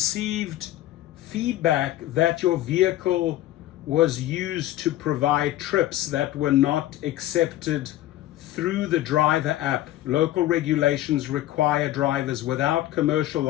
feedback that your vehicle was used to provide trips that were not accepted through the driver app. Local regulations require drivers without commercial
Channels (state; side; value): quieter; right; 14.6 dB